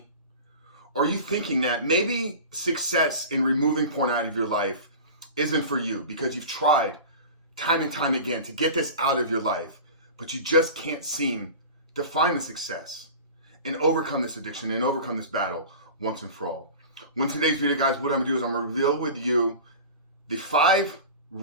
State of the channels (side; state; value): both; inverted; correlation -0.34